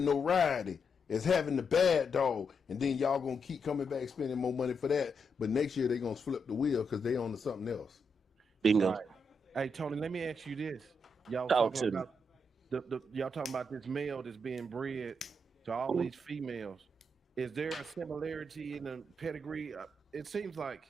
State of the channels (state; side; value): normal; both; correlation 0.81